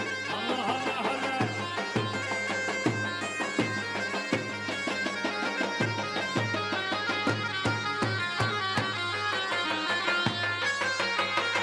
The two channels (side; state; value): both; identical; correlation 1.00